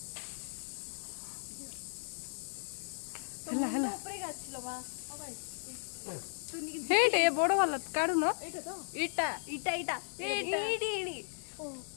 हेला हेला हेटे बड़ वाला काढू न इटा इटा इटा इटी इटी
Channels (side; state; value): right; silent; digital silence